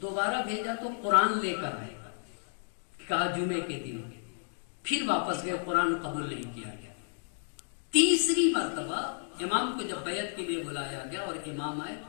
بھیجا تو قرآن لے کر آئے گا, کہا جمعے کے دن, پھر واپس گئے, قرآن قبول نہیں کیا گیا. تیسری مرتبہ امام کو جب بیعت کے لیے بلایا گیا اور امام آئے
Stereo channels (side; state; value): right; silent; digital silence